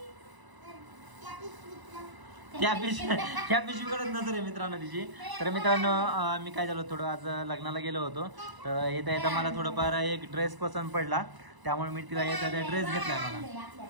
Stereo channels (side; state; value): left; late; 1.0 ms